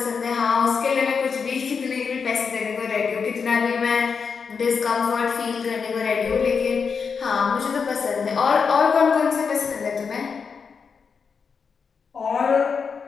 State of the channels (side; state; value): right; quieter; 5.8 dB